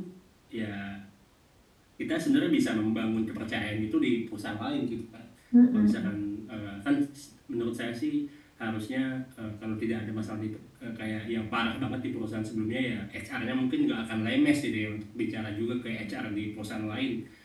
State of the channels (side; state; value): both; identical; correlation 1.00